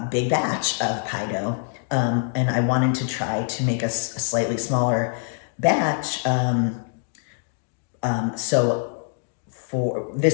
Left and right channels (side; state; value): right; silent; digital silence